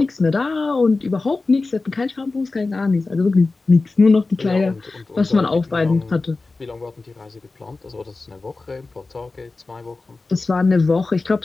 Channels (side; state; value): right; quieter; 3.6 dB